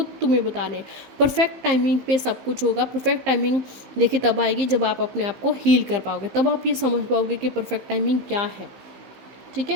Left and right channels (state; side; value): late; left; 15 ms